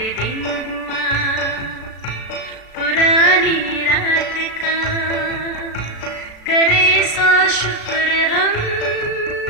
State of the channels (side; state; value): right; late; 36 ms